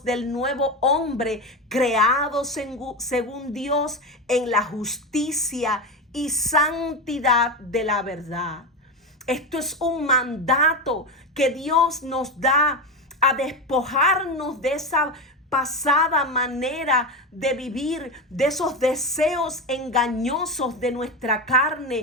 del nuevo hombre creados según Dios en la justicia y santidad de la verdad. Esto es un mandato que Dios nos da a despojarnos de esa pasada manera de vivir, de esos deseos engañosos de nuestra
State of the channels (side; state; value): both; normal; correlation 0.18